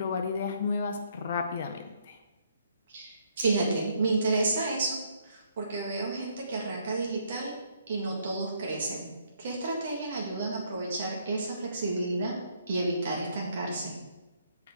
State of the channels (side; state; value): both; inverted; correlation -0.69